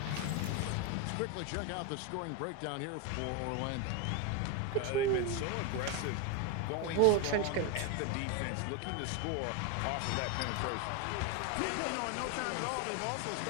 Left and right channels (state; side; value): different; both; correlation 0.02